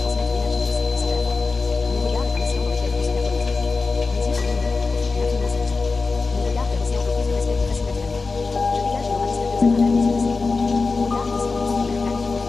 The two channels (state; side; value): quieter; right; 4.1 dB